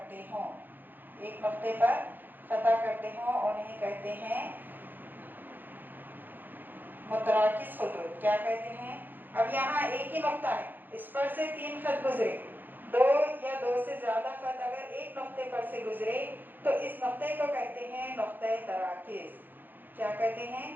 ہوں انہیں کہتے ہیں متراکز خطوط. کیا کہتے ہیں؟ اب یہاں ایک ہی نقطہ ہے، اس پر سے تین خط گزرے. دو یا دو سے زیادہ خط اگر ایک نقطے پر سے گزرے تو اس نقطے کو کہتے ہیں نقطۂ تراکز. کیا کہتے ہیں؟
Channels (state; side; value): late; left; 0.090 ms